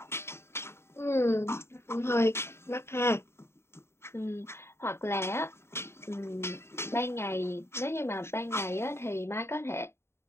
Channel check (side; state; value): right; late; 0.12 ms